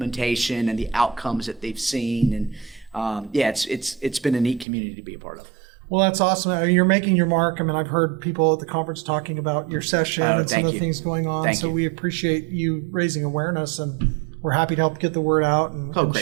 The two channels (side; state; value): left; drops out; at 4.7 s